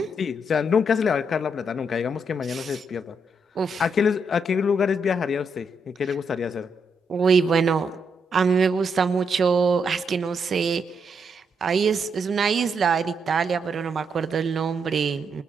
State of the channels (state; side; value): normal; both; correlation 0.78